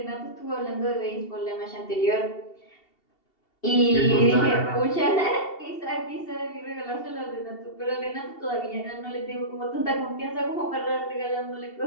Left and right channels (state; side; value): late; right; 2.7 ms